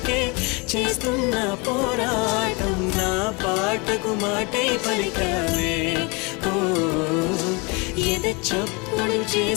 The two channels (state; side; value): quieter; right; 29.1 dB